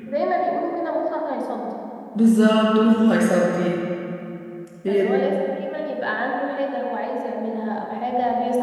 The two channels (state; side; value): identical; both; correlation 1.00